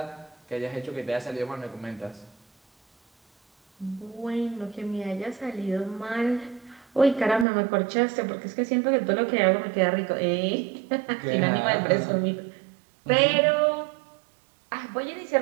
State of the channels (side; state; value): left; drops out; at 7.5 s